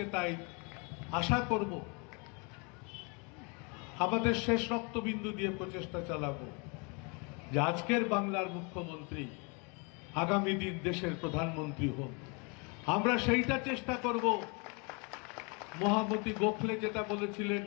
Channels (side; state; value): right; quieter; 32.4 dB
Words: তাই আশা করব, আমাদের শেষ রক্তবিন্দু দিয়ে প্রচেষ্টা চালাবো যে আজকের বাংলার মুখ্যমন্ত্রী আগামী দিন দেশের প্রধানমন্ত্রী হন। আমরা সেইটা চেষ্টা করব। মহামতি গোখলে যেটা বলেছিলেন,